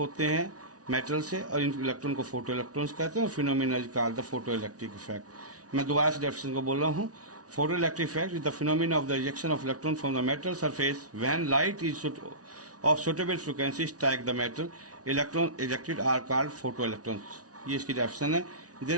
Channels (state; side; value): late; left; 0.68 ms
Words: हैं मेटल से और इन इलेक्ट्रॉन को फोटो इलेक्ट्रॉन्स कहते हैं. Phenomena is called the photoelectric effect. मैं दोबारा से डेफिनेशन को बोल रहा हूँ. Photoelectric effect is the phenomenon of the ejection of electron from the metal surface when light is of suitable frequency strike the metal. Electron ejected are called photoelectrons. ये इसकी डेफिनेशन है.